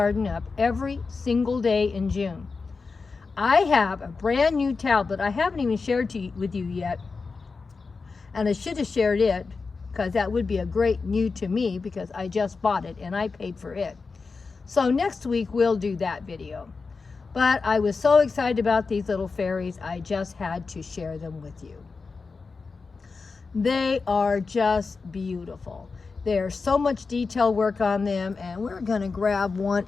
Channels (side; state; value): right; quieter; 4.5 dB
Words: up every single day in June. I have a brand new tablet I haven't even shared with you yet. And I should have shared it because that would be a great new to me because I just bought it and I paid for it. So next week we'll do that video. But I was so excited about these little fairies, I just had to share them with you. They are just beautiful. There's so much detail work on them, and we're gonna grab one